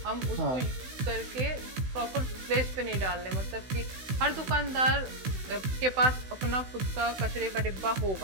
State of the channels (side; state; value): left; late; 16 ms